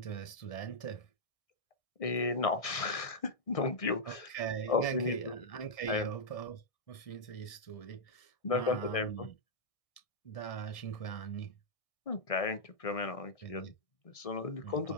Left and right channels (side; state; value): right; late; 1.6 ms